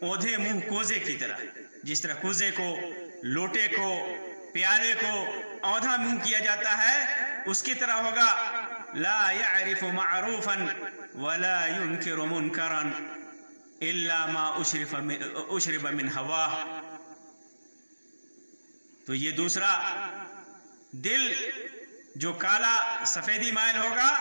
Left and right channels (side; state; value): both; inverted; correlation -1.00